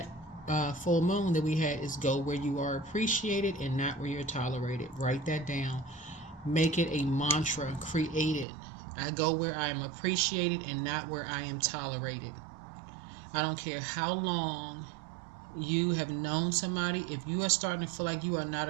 full moon that we had is go where you are appreciated and not where you're tolerated. Write that down. Make it a mantra. Create it. I go where I am appreciated and not where I am tolerated. I don't care how long you have known somebody. If you are starting to feel like you are not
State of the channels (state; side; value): drops out; left; at 8.5 s